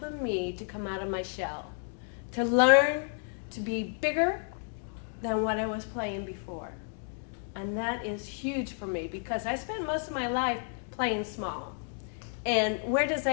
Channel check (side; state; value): right; silent; 57 dB below the other